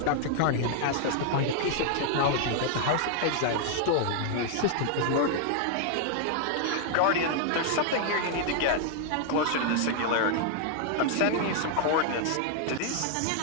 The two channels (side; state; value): both; different; correlation 0.00